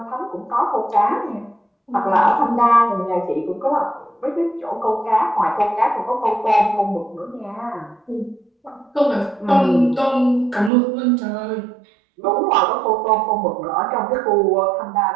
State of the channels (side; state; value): left; drops out; at 10.7 s